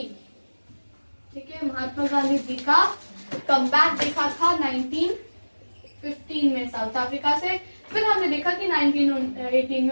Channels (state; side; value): inverted; both; correlation -1.00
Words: ठीक है, महात्मा गांधी जी का कमबैक देखा था 1915 में साउथ अफ्रीका से। फिर हमने देखा कि 1918 में